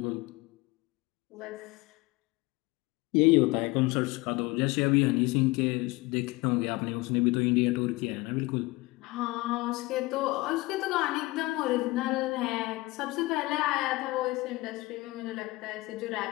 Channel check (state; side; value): quieter; right; 21.7 dB